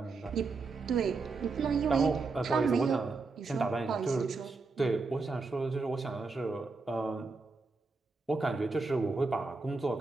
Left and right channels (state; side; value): quieter; left; 4.0 dB